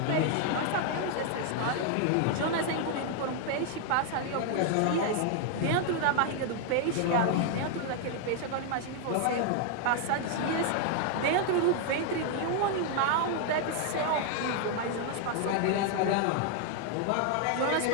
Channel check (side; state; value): both; different; correlation 0.00